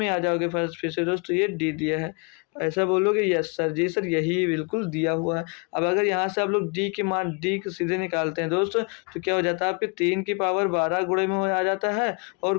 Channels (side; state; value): right; quieter; 32.5 dB